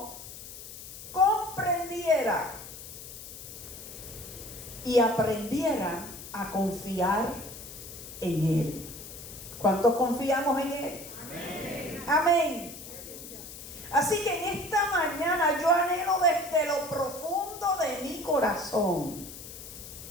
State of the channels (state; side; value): noise; left; hiss, 13 dB below the sound